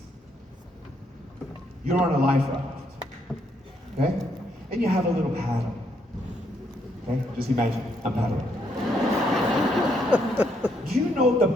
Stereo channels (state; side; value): normal; both; correlation 0.74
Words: you're on a life raft, okay? And you have a little paddle, okay? Just imagine, I'm paddling. Do you know the